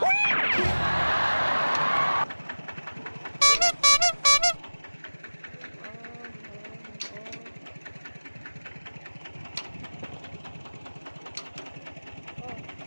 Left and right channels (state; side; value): inverted; both; correlation -1.00